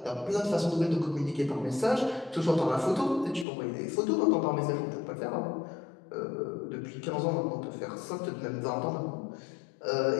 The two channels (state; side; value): drops out; right; at 3.5 s